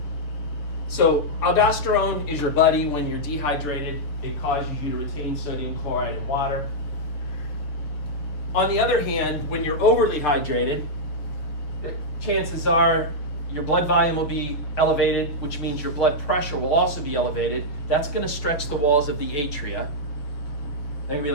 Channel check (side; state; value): right; late; 6.6 ms